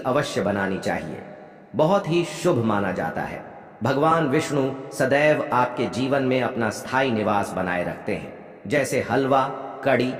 बनानी चाहिए, बहुत ही शुभ माना जाता है। भगवान विष्णु सदैव आपके जीवन में अपना स्थायी निवास बनाए रखते हैं। जैसे हलवा, कड़ी,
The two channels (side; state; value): both; identical; correlation 1.00